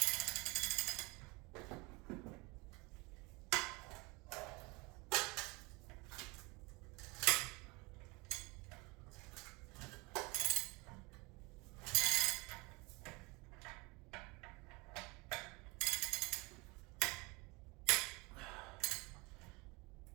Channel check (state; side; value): quieter; left; 26.3 dB